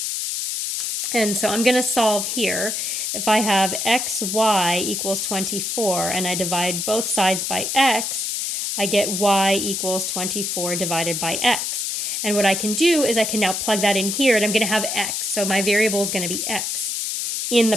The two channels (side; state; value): left; noise; hiss, 2 dB below the sound